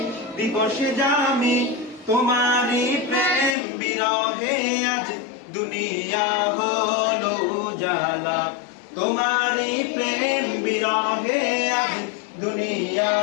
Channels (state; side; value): drops out; right; at 3.6 s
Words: দিবসে দামি তোমারই প্রেম বিরহে আজ দুনিয়া হলো উজালা তোমারই প্রেম বিরহে আজ দুনিয়া